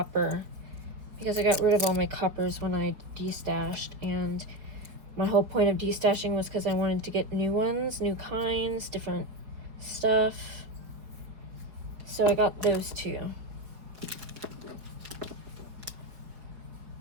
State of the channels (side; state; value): left; late; 5.0 ms